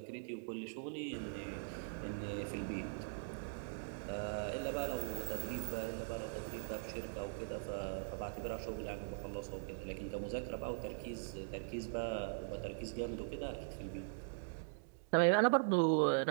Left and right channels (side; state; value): left; silent; digital silence